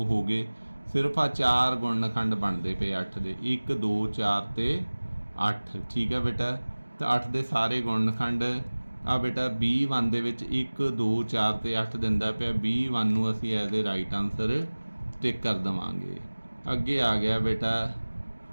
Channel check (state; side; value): inverted; both; correlation -1.00